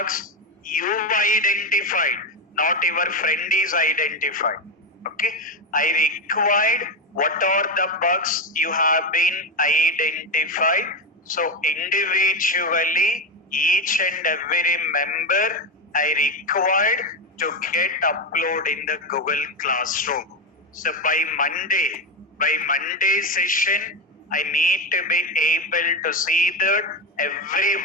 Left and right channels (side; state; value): both; normal; correlation 0.13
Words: You identified, not your friend is identified. Okay, I required what are the bugs you have been identified. So individually, each and every member I required to get upload in the Google Classroom. So by Monday session, I need to be able to see that